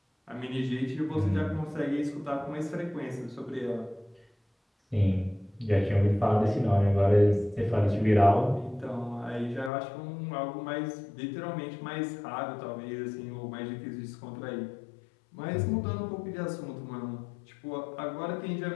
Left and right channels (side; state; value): right; drops out; at 9.7 s